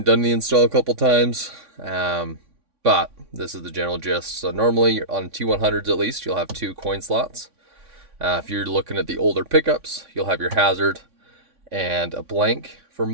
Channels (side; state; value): left; late; 3.6 ms